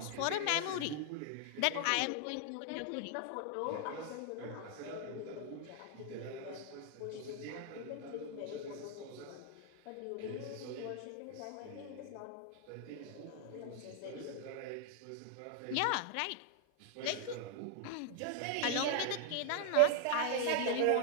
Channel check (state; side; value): different; both; correlation 0.00